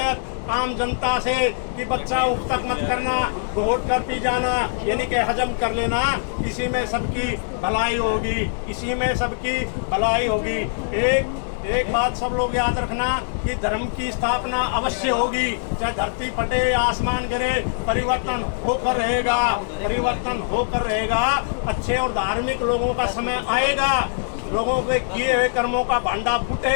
आम जनता से कि बच्चा उठ तक मत करना, घोट कर पी जाना, यानी कि हजम कर लेना, इसी में सबकी भलाई होगी, इसी में सबकी भलाई होगी। एक बात सब लोग याद रखना कि धर्म की स्थापना अवश्य होगी, चाहे धरती फटे या आसमान गिरे, परिवर्तन होकर रहेगा, परिवर्तन होकर रहेगा। अच्छे और धार्मिक लोगों का समय आएगा, लोगों के किए हुए कर्मों का भांडा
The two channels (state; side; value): silent; right; digital silence